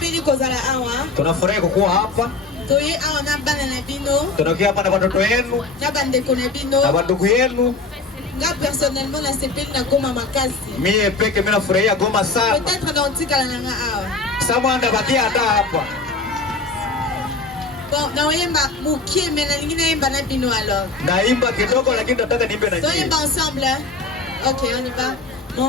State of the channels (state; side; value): quieter; right; 3.7 dB